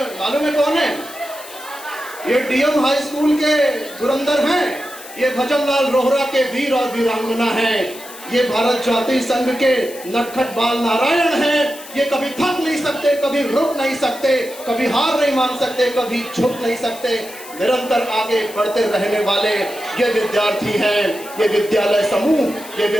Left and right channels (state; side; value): noise; left; hiss, 16 dB below the sound